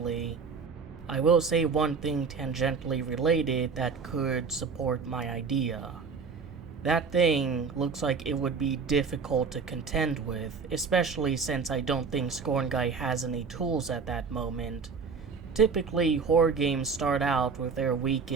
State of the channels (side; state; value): left; quieter; 5.3 dB